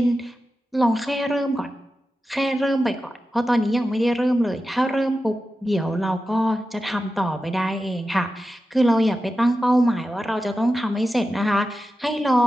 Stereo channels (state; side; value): normal; both; correlation 0.92